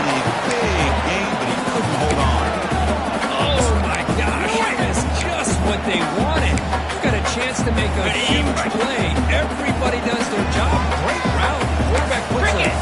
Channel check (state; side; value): identical; both; correlation 1.00